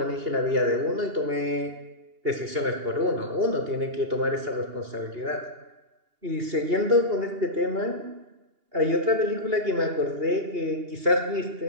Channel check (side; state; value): left; late; 2.8 ms